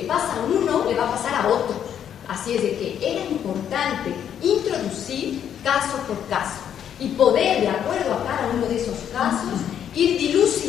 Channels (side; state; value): right; quieter; 9.2 dB